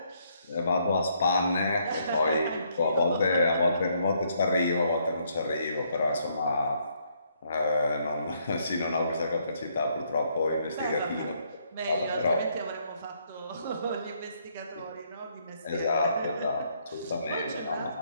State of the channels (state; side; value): inverted; both; correlation -0.71